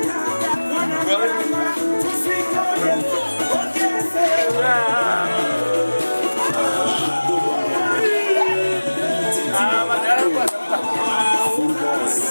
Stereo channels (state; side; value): inverted; both; correlation -1.00